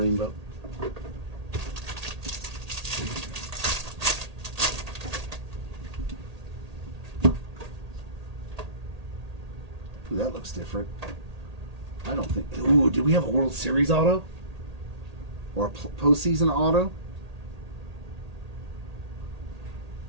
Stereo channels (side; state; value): left; late; 1.8 ms